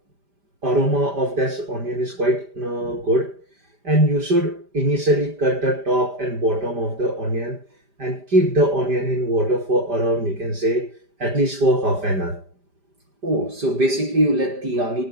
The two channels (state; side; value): late; left; 5.0 ms